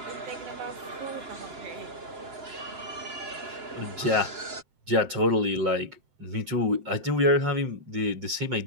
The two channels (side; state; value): left; late; 7.7 ms